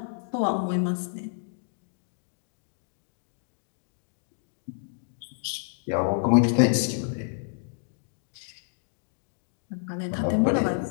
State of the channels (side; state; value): right; silent; digital silence